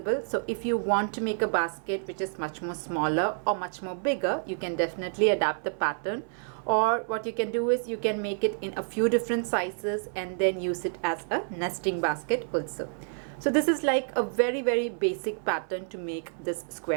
so if you want to make a basket which is much more smaller or much more bigger, you can definitely adapt the pattern, or what you can do is you can make it in a few different sizes and then use it as a nesting basket also. So this is like a very basic pattern to make this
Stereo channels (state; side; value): silent; left; 59 dB below the other